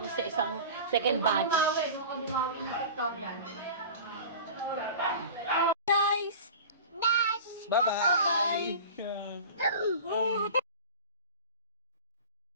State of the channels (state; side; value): inverted; both; correlation -0.36